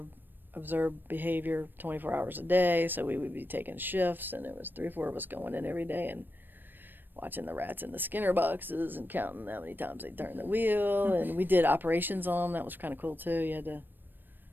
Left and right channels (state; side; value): late; left; 0.093 ms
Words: behavior 24 hours a day, so we would be taking shifts, and there was 3 or 4 of us going in every day and watching the rats in the Skinner boxes and counting how many times they turned the wheel. And we did operations on them. That was kind of cool too. You had to